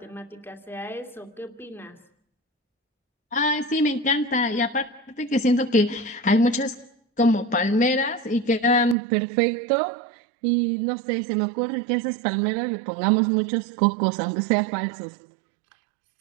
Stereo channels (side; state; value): left; drops out; at 9.0 s